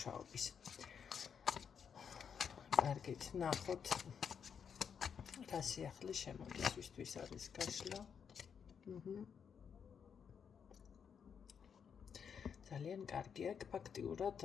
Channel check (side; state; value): right; quieter; 7.1 dB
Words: კარგით, ნახოთ რა სიახლე შემოდის, ვისთვის არის გაშლა. ძალიან კარგი აქ ფაქტიურად